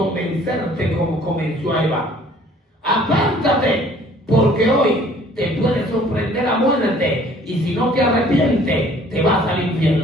como convenció a Eva. Apártate, porque hoy te puede sorprender la muerte, y si no te arrepientes, te vas al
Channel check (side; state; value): both; normal; correlation 0.55